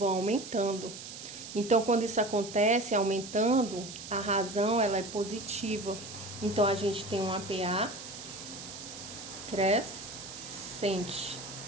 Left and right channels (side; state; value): right; noise; hiss, 11 dB below the sound